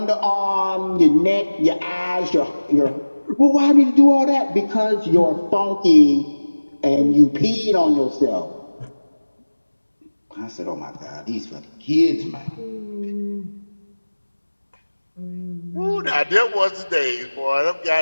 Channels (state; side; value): inverted; both; correlation -1.00